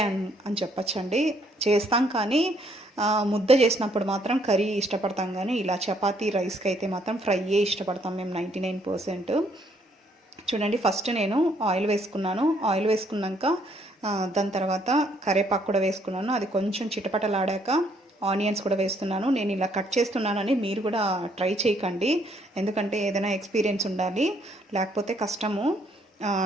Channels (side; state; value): both; normal; correlation 0.68